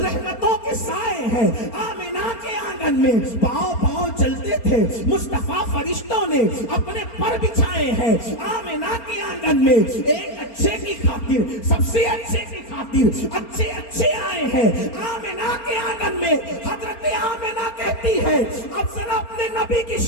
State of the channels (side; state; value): right; late; 4.3 ms